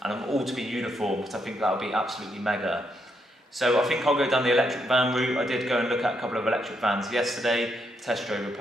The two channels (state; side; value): normal; both; correlation 0.78